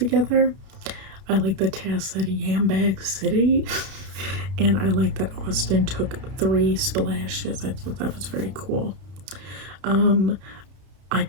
I like that Taz said Yambag City. And I like that Austin took 3 splashes. I thought that was very cool. I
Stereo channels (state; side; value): late; left; 31 ms